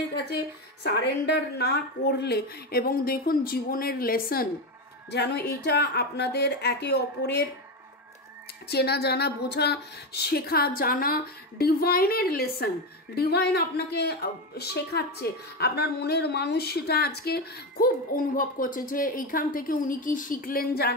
কাছে সারেন্ডার না করলে, এবং দেখুন জীবনের লেসন যেন এটা আপনাদের একে অপরের চেনা জানা, বোঝা, শেখা জানা, ডিভাইনের লেসন, ডিভাইন আপনাকে শেখাচ্ছে। আপনার মনের মানুষ সেটা আজকে খুব অনুভব করছে যে এইখান থেকে উনি কি শিখলেন,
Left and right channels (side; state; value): both; normal; correlation 0.14